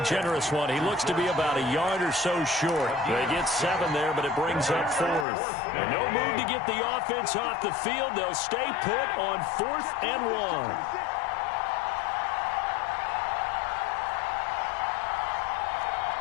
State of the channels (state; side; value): drops out; right; at 5.2 s